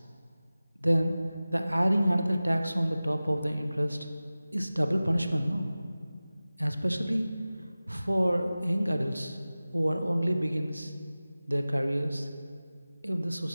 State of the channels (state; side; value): inverted; both; correlation -0.97